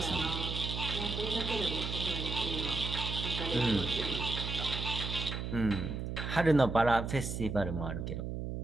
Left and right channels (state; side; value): noise; right; hum, 4 dB below the sound